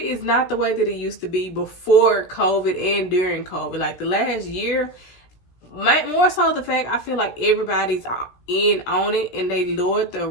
is not the way that it used to be before COVID and during COVID. Like the last year, more so the fact I feel like everybody's in on it and they lowered the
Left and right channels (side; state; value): right; late; 17 ms